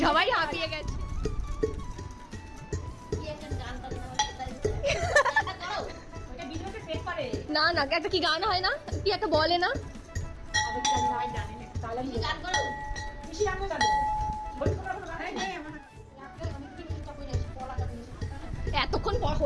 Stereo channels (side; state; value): both; identical; correlation 1.00